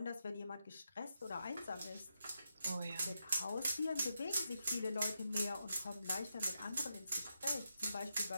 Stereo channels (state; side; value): inverted; both; correlation -0.84